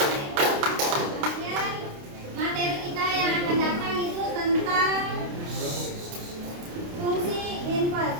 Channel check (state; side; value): late; left; 29 ms